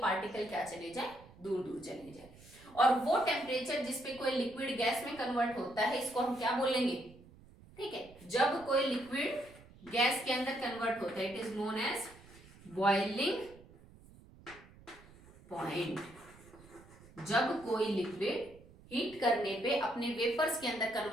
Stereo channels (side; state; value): right; noise; rumble, 22 dB below the sound